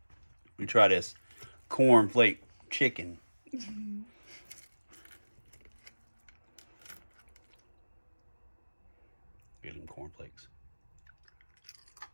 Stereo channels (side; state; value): both; inverted; correlation -1.00